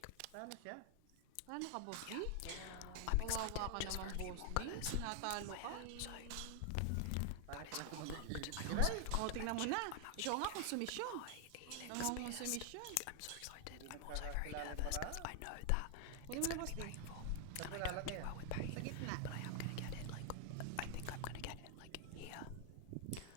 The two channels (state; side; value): different; both; correlation 0.00